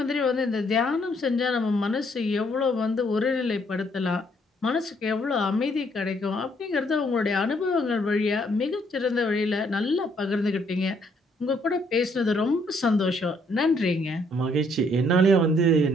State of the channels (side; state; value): both; normal; correlation 0.68